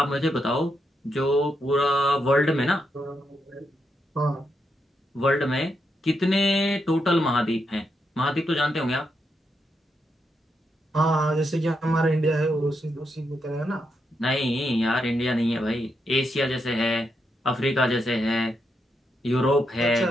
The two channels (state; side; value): normal; both; correlation 0.82